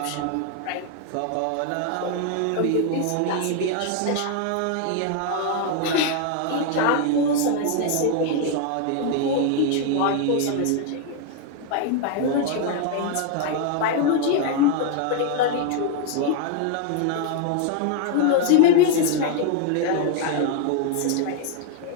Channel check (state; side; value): different; both; correlation 0.01